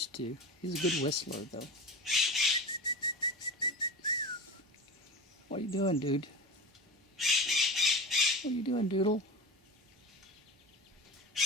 to. He's a good whistler, though. What are you doing, dude? What are you doing, Doodle?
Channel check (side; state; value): both; normal; correlation 0.31